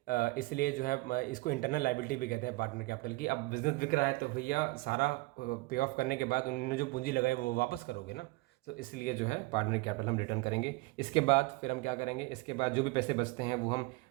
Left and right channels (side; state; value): left; quieter; 22.7 dB